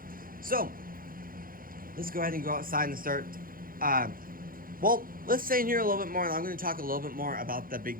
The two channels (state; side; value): late; left; 0.41 ms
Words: So let's go ahead and go outside and start. Well, let's stay in here a little bit more, and I'm going to talk a little bit more about the